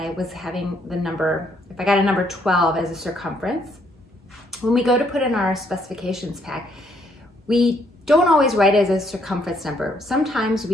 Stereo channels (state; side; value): normal; both; correlation 0.70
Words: was having the number, if I got a number 12 as a circumference, when we go to put in our specifications pack, we don't always write it as a circumference number. Sometimes